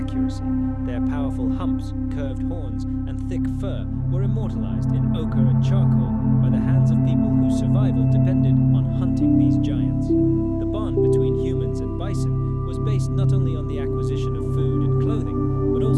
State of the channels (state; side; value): identical; both; correlation 1.00